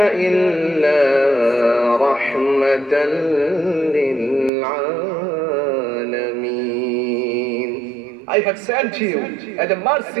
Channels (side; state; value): left; drops out; at 4.5 s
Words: إِلَّا رَحْمَةً لِلْعَالَمِينَ. I have sent you as a